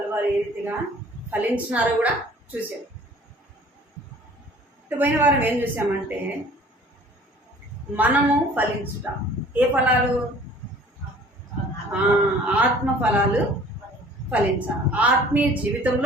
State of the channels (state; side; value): normal; both; correlation 0.50